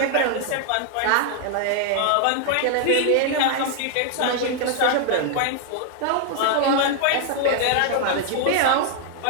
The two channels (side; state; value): both; different; correlation 0.00